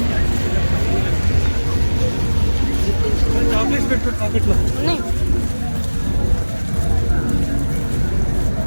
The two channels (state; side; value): inverted; both; correlation -1.00